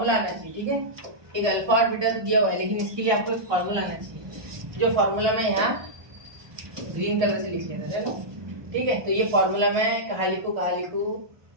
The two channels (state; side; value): late; left; 1.2 ms